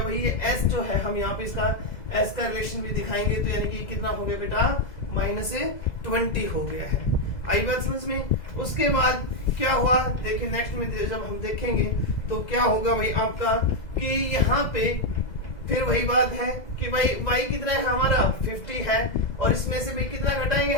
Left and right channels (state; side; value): late; right; 2.0 ms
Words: भाई, ये s जो है हम यहाँ पे इसका s का रिलेशन भी दिखाएंगे, तो यानी कि कितना हो गया बेटा, -20 हो गया है। आई बात समझ में। उसके बाद क्या हुआ, देखिए नेक्स्ट में जब हम देखेंगे तो क्या होगा भाई आपका, कि यहाँ पे फिर वही बात है कि भाई y कितना है हमारा 50 है, और इसमें से भाई कितना घटाएंगे